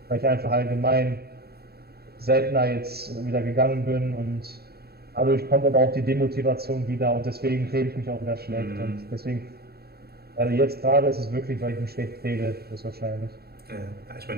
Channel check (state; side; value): late; left; 0.46 ms